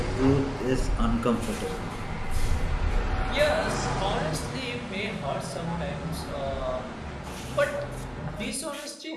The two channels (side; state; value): both; identical; correlation 1.00